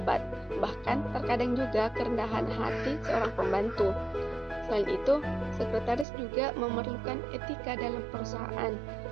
Bahkan terkadang juga kerendahan hati seorang pembantu. Selain itu, sekretaris juga memerlukan etika dalam perusahaan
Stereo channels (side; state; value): left; drops out; at 6.1 s